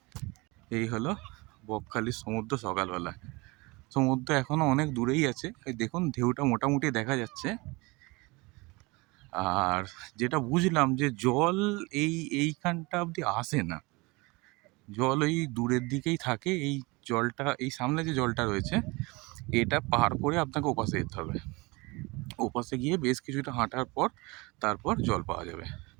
এই হলো বকখালির সমুদ্র সকালবেলা। সমুদ্র এখনো অনেক দূরেই আছে, এই দেখুন ঢেউটা মোটামুটি দেখা যাচ্ছে। আর যেটা বুঝলাম যে জল এইখানটা অবধি আসে না, জল ওই দূরের দিকেই থাকে। এই জলটা, এই সামনে যে জলটা রয়েছে, এটা পার করে আপনাকে ওপাশে যেতে হবে। ওপাশে গিয়ে বেশ কিছুটা হাঁটার পর তারপর জল পাওয়া যাবে।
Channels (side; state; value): left; quieter; 25.0 dB